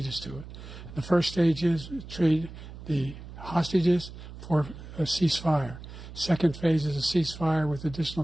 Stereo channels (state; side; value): noise; right; hum, 13 dB below the sound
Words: to it. The first stage is trade the hostages for a ceasefire. Second phase is a ceasefire with